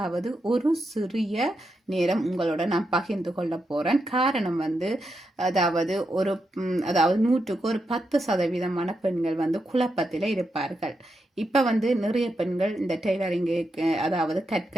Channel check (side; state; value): both; normal; correlation 0.85